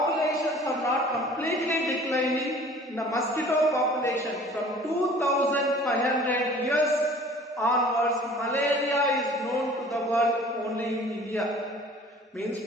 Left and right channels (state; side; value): normal; both; correlation 0.48